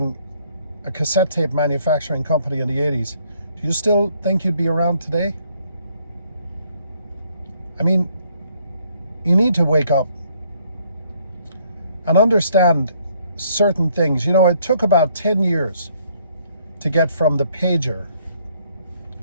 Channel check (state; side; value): inverted; both; correlation -0.67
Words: a cassette tape manufacturing company in the 80s, do you still think you'd be around today? I mean, you need to wake up and understand certain things. It took about 10 years to get from the pager